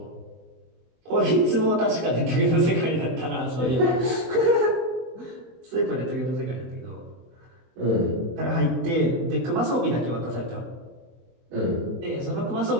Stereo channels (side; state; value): left; late; 24 ms